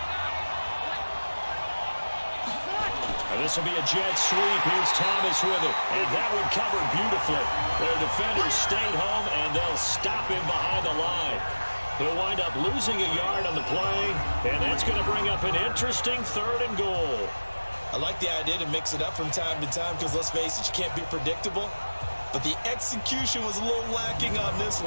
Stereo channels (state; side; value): inverted; both; correlation -1.00